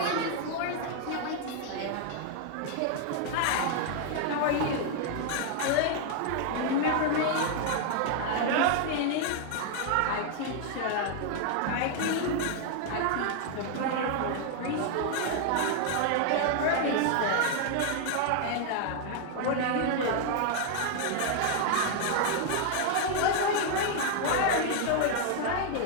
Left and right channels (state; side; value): different; both; correlation 0.00